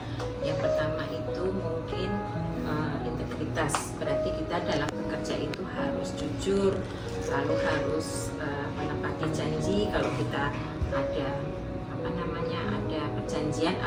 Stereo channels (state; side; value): identical; both; correlation 1.00